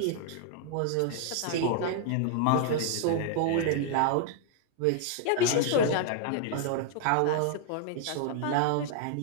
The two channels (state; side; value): different; both; correlation 0.00